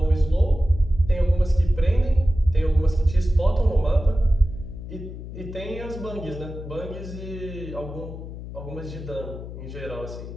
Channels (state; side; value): noise; left; hum, 11 dB below the sound